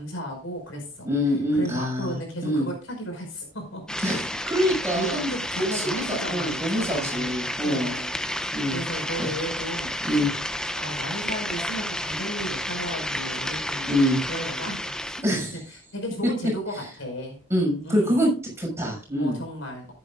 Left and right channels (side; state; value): both; normal; correlation 0.63